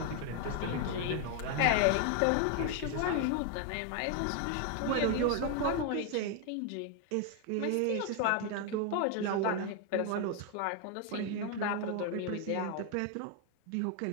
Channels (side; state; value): both; different; correlation 0.01